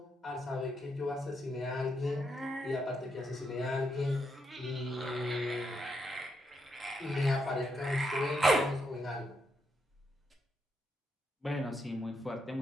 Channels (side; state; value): both; normal; correlation 0.80